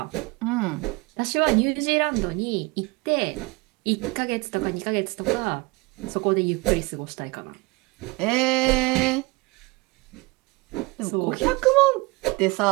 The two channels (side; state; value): left; quieter; 24.9 dB